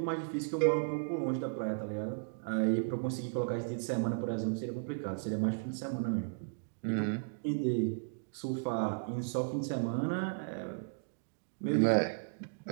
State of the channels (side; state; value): left; silent; digital silence